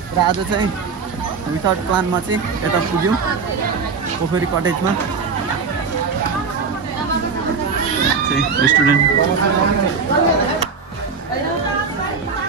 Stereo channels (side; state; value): left; quieter; 5.2 dB